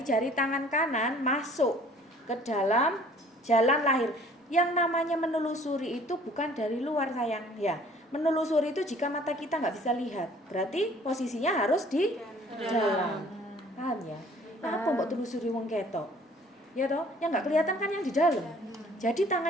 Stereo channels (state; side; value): normal; both; correlation 0.54